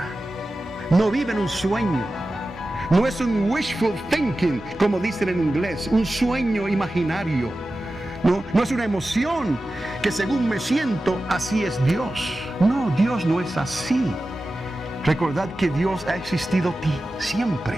No viven un sueño. No es un wishful thinking, como dicen en inglés, un sueño imaginario. No es una emoción que según me siento, así es Dios. No, Dios no es así. Recordad que Dios ha existido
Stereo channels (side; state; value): both; normal; correlation 0.94